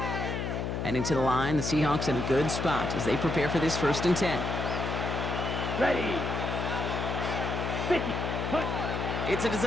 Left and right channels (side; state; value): left; noise; hum, 2 dB below the sound